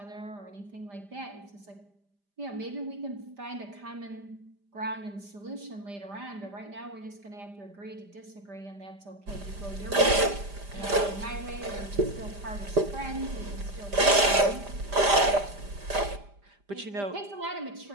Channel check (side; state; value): left; late; 5.0 ms